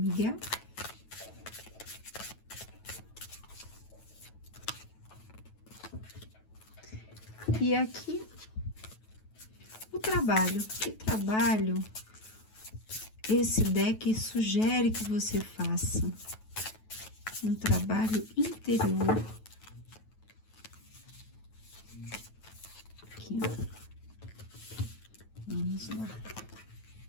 E aqui o trabalho. Que trabalho esse deck sugere que você faça? Um trabalho interior. Aqui. Vamos lá.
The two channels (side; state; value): right; late; 9.2 ms